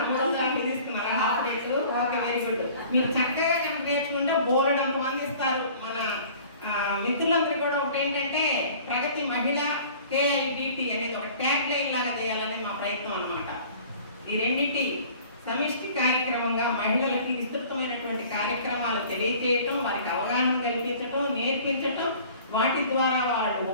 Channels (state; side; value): inverted; both; correlation -0.48